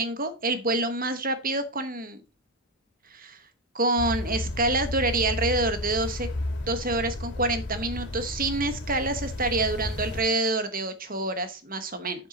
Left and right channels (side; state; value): both; normal; correlation 0.12